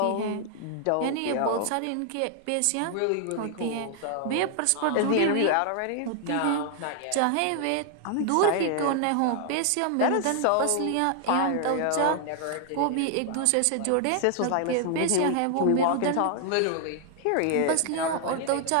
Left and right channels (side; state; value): both; different; correlation 0.00